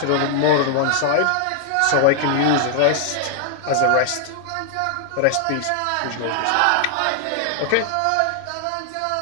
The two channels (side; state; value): both; different; correlation 0.00